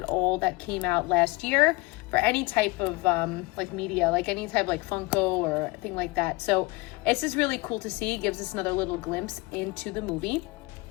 all that came out last year for any type of like media, like any type like Funko or thing like that. So it's just really cool to see. It gives us another little glimpse into the movie.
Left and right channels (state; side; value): quieter; right; 23.8 dB